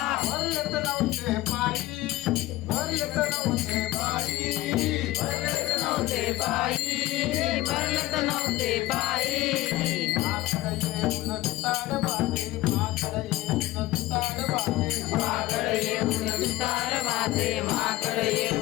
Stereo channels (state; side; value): quieter; right; 17.4 dB